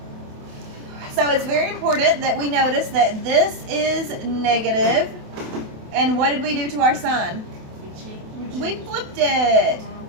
So it's very important that we notice that this is negative. And what did we do to our sign? We flipped it.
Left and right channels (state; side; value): late; left; 28 ms